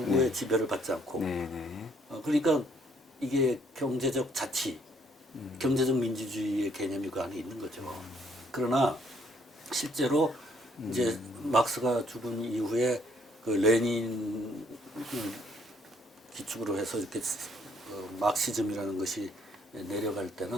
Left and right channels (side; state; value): both; normal; correlation 0.66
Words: 네. 지배를 받지 않고. 네. 네. 그러니까 이게 경제적 자치, 경제적 민주주의의 개념이 그 안에 있는 거죠. 그러나 실제로 이제 막스가 죽은 이후에 그 레닌 기축으로 해서 이렇게 막시즘이라는 것이 내려갈